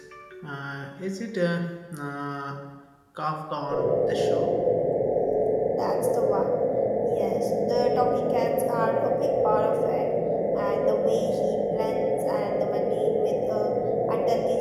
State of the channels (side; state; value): both; identical; correlation 1.00